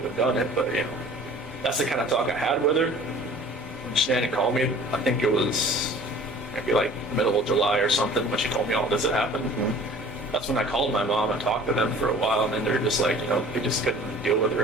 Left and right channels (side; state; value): both; normal; correlation 0.48